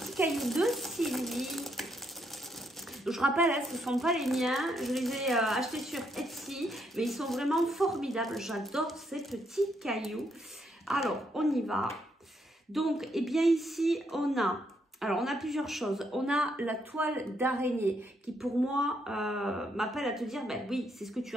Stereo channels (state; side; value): normal; both; correlation 0.75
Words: cailloux de Sylvie. Je rappelle, ce ne sont pas les miens, je les ai achetés sur Etsy, mais ils sont vraiment formidables. J'adore ces petits cailloux. Alors, on y va. Donc, bien ici, on a plusieurs choses. On a la toile d'araignée qui, pour moi, m'appelle à te dire, oui, c'est ce que tu